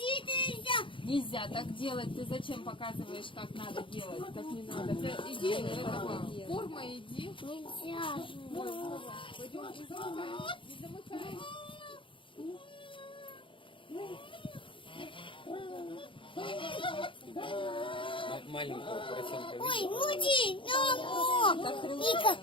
Нельзя так делать. Ты зачем показываешь, как надо делать? Так не надо. Ты иди, этого, форма иди. Нельзя. Пойдем, не замыкай. Маленького поросенка. Ой, муди, Ника,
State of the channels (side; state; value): right; late; 0.25 ms